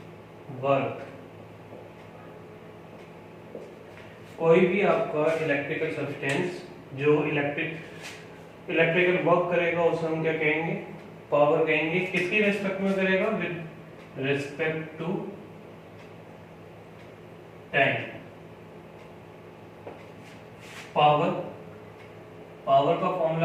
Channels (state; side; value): identical; both; correlation 1.00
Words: work, कोई भी आपका इलेक्ट्रिकल सब्सटेंस जो इलेक्ट्रिकल वर्क करेगा उसे हम क्या कहेंगे? पावर कहेंगे। किसकी रिस्पेक्ट में करेगा? With respect to time. Power का